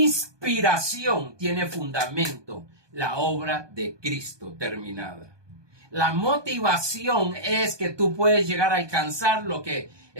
tiene fundamento, la obra de Cristo terminada. La motivación es que tú puedes llegar a alcanzar lo que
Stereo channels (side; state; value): left; late; 1.2 ms